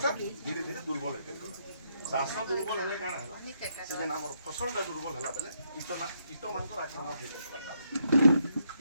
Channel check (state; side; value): inverted; both; correlation -0.77